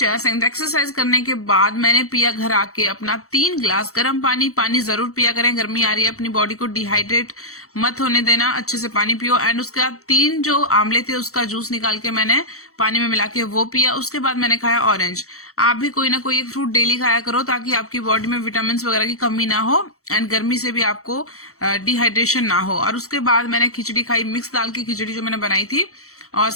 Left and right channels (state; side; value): late; right; 0.64 ms